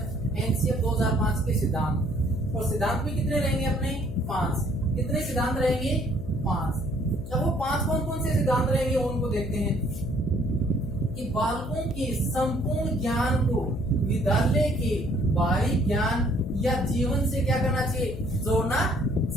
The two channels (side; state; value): left; noise; hum, 10 dB below the sound